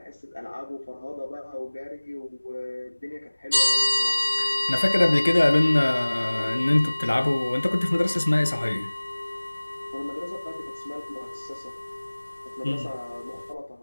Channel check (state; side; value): inverted; both; correlation -1.00